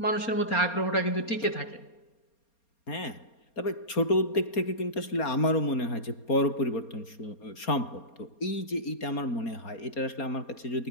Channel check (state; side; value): late; right; 4.3 ms